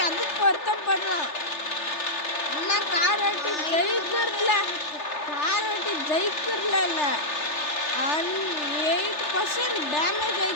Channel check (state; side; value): late; right; 3.3 ms